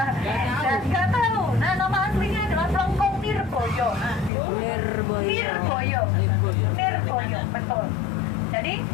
Dan nggak tahu. Nah, nama aslinya adalah Plengkung Nirboyo. Nirboyo, betul. Jadi,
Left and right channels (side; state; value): right; drops out; at 4.3 s